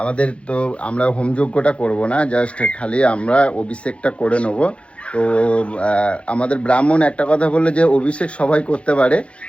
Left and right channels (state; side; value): late; right; 0.060 ms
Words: আমাদের তো আমরা হোমযজ্ঞটা করব না, জাস্ট খালি আমরা অভিষেকটা করে নেবো। তো আমাদের ব্রাহ্মণ একটা কথা বললো যে অভিষেক সবাই করতে পারে,